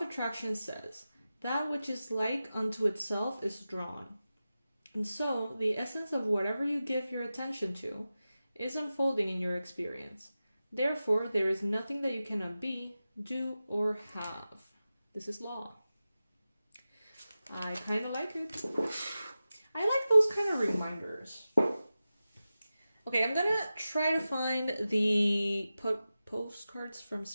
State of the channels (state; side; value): inverted; both; correlation -0.94